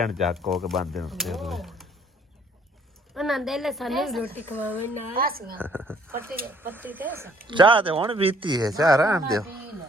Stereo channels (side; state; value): both; normal; correlation 0.61